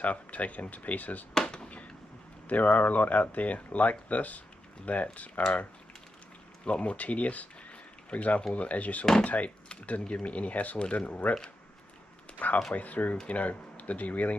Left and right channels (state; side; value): normal; both; correlation 0.87